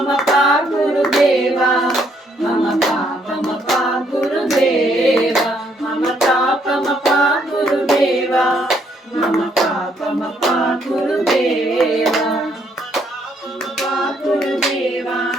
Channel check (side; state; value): both; normal; correlation 0.70